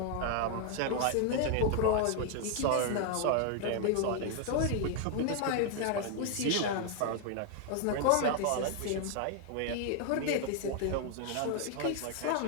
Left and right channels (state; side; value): different; both; correlation 0.00